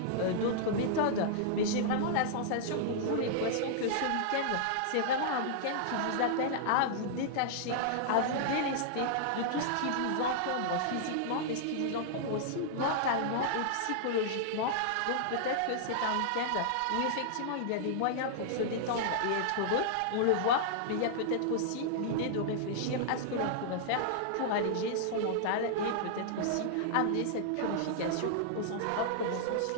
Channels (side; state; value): both; different; correlation -0.01